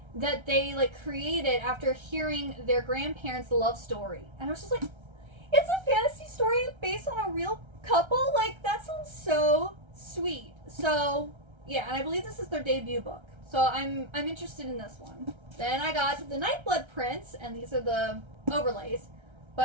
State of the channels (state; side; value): late; left; 1.3 ms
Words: that they like created after hearing their grandparents' love story. And I was just like, it's a fantasy story based on a real couple? Like, that sounds so sweet. So yeah, and I believe this is their debut book. So I'm interested in this one. Then I got The Nightblood Prince, and these are the overlays.